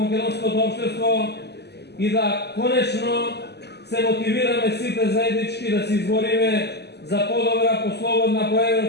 општество и да конечно се мотивираме сите заеднички да се избориме за подобра, послободна,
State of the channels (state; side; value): late; right; 0.49 ms